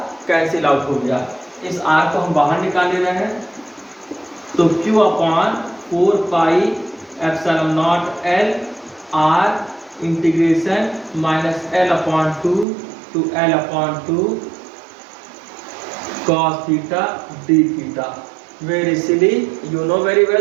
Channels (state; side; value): drops out; left; at 12.7 s